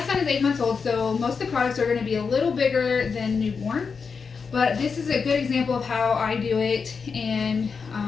son is 8 months old, so most of the products are going to be a little bigger than newborn, but this is a good example of how I do it, and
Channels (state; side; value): quieter; right; 5.5 dB